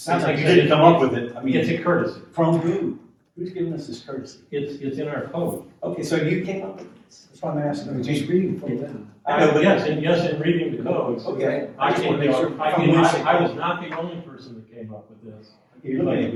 like you didn't come up with it. I mean, It's a courtesy. from who? Who's giving us this courtesy? It's in our code. Okay, so you came up with this. That's why I'm asking. I'm just reading from them. I know, but Yes, in reading the codes. Okay. I just wanna make sure. I was not the only person that came up with this. You're looking at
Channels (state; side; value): identical; both; correlation 1.00